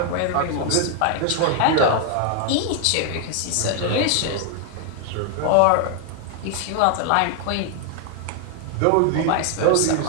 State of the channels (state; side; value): different; both; correlation 0.00